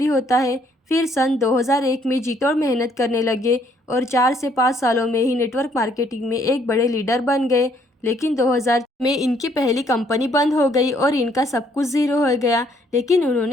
होता है। फिर सन 2001 में जी तोड़ मेहनत करने लगे और 4 से 5 सालों में ही नेटवर्क मार्केटिंग में एक बड़े लीडर बन गए। लेकिन 2000 में इनकी पहली कंपनी बंद हो गई और इनका सब कुछ ज़ीरो हो गया। लेकिन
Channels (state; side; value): normal; both; correlation 0.66